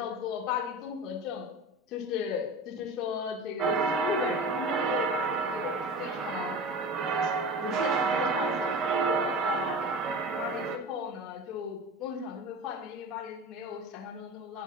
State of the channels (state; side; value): normal; both; correlation 0.32